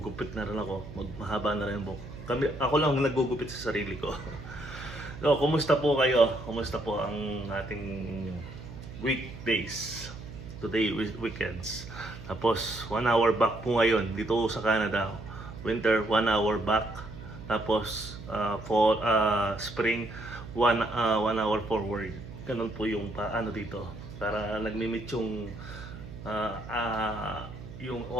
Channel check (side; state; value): right; noise; hum, 13 dB below the sound